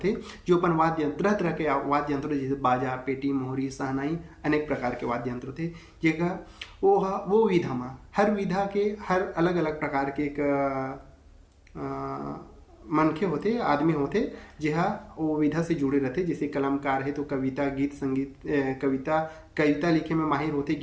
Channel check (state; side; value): identical; both; correlation 1.00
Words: जो अपन वाद्य यंत्र, तरह तरह के वाद्य यंत्र, जैसे बाजा, पेटी, मोहरी, सहनाई, अनेक प्रकार के वाद्य यंत्र थे, जेका वो विधा में हर विधा के हर अलग अलग प्रकार के एक मनखे होते, आदमी होते, जहाँ वो विधा से जुड़े रहते। जैसे कलमकार है तो कविता, गीत, संगीत, कविता लिखे में माहिर होते,